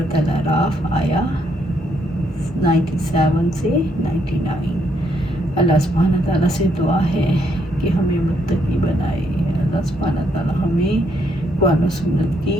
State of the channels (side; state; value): both; normal; correlation 0.73